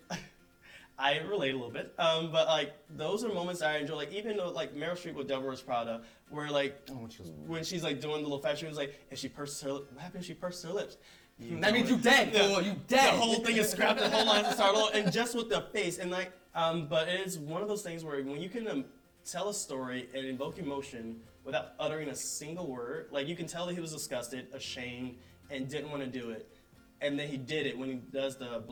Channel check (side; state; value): both; identical; correlation 1.00